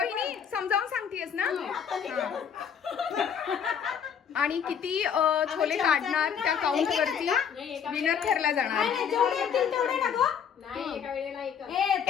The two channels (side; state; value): right; quieter; 7.7 dB